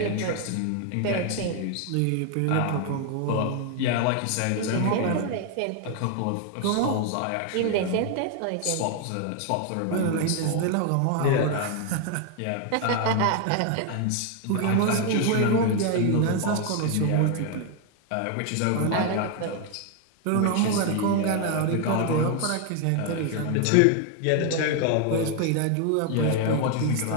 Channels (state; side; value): different; both; correlation 0.00